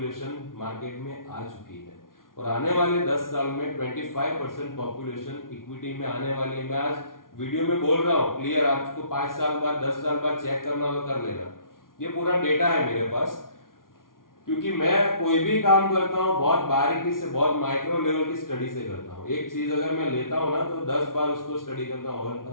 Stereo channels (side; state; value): right; late; 0.90 ms